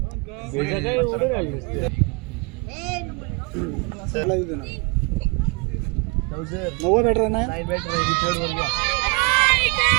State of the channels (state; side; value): quieter; left; 29.0 dB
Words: नव्वद बॅटर ना